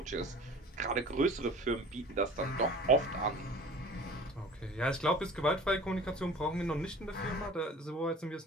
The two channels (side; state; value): both; normal; correlation 0.42